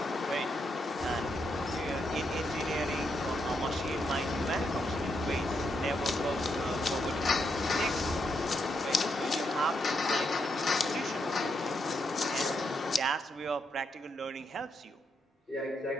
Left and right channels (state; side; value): normal; both; correlation 0.80